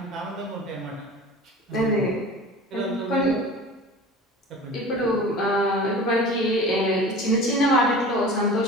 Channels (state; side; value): normal; both; correlation 0.38